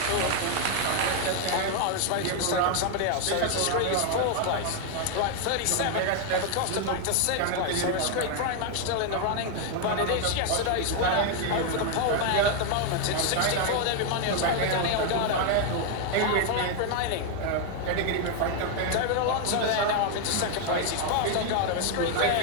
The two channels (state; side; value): different; both; correlation 0.00